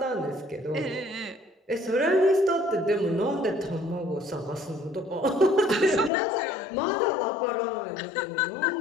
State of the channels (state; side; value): drops out; right; at 6.1 s